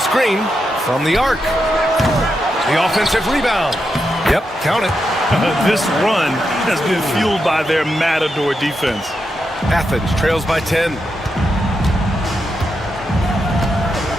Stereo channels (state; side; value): normal; both; correlation 0.85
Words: from the arc. The offensive rebound. Yep, count it. This run has been fueled by their Matador defense. Athens trails by 10.